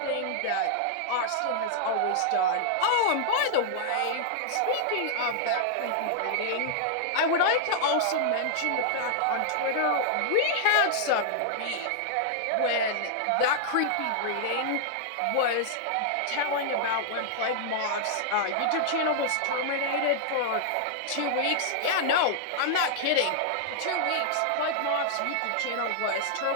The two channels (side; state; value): both; different; correlation -0.01